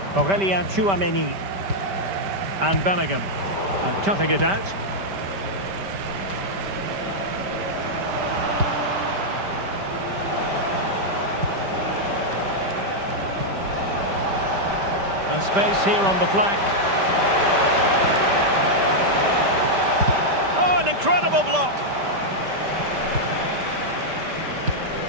Aurélien Tchouaméni. And Bellingham. And cutting it out. And space here on the flank. Incredible block.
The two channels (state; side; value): late; left; 5.1 ms